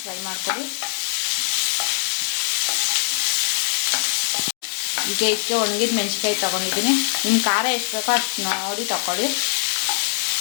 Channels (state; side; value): silent; right; digital silence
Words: ಫ್ರೈ ಮಾಡ್ಕೊಳ್ಳಿ. ಈಗ ಇದಕ್ಕೆ ಒಣಗಿದ ಮೆಣಸಿನ್ಕಾಯಿ ತೊಗೊಂಡಿದ್ದೀನಿ. ನಿಮ್ಮ ಖಾರ ಎಷ್ಟು ಬೇಕೋ ಅಷ್ಟು ನೋಡಿ ತಗೊಳ್ಳಿ.